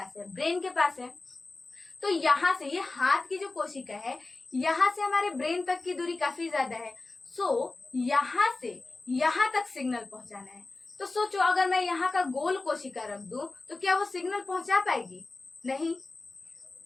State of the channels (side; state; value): right; quieter; 3.4 dB